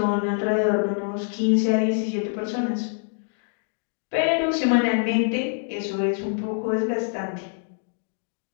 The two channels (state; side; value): silent; right; digital silence